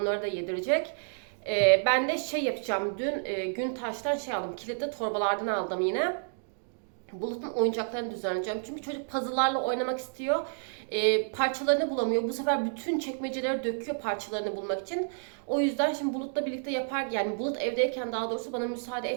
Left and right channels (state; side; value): silent; left; digital silence